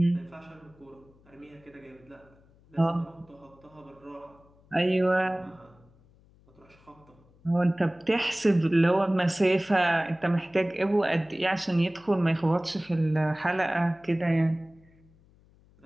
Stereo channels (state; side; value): noise; left; hum, 29 dB below the sound